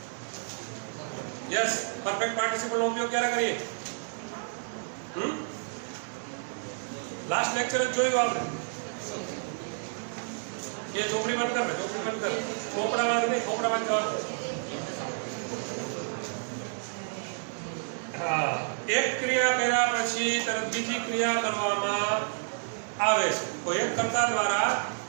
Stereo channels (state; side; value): silent; left; digital silence